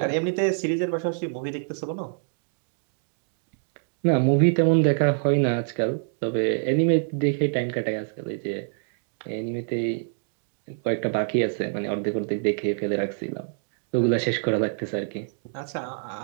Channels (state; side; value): silent; left; digital silence